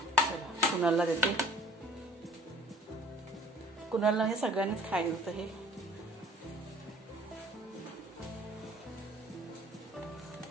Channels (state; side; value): normal; both; correlation 0.52